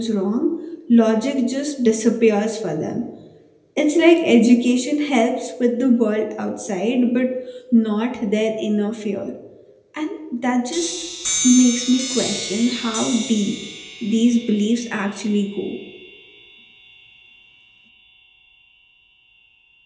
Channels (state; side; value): identical; both; correlation 1.00